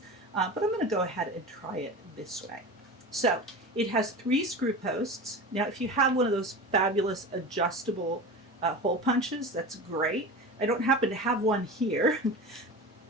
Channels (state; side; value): normal; both; correlation 0.31